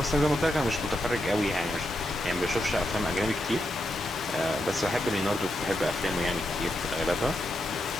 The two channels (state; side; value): normal; both; correlation 0.84